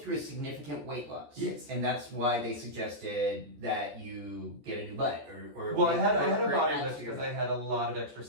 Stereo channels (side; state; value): left; late; 14 ms